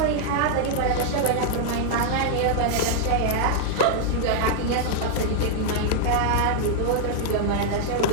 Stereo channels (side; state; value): both; different; correlation -0.01